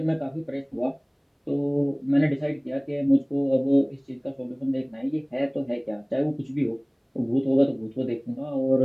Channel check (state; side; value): identical; both; correlation 1.00